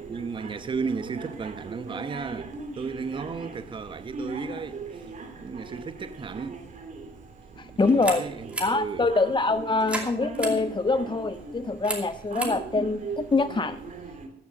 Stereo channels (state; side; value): normal; both; correlation 0.58